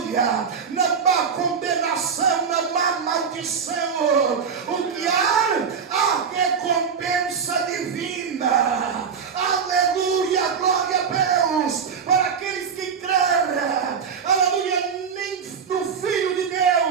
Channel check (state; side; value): quieter; left; 6.4 dB